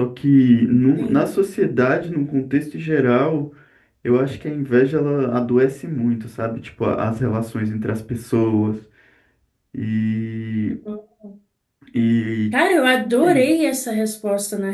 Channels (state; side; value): identical; both; correlation 1.00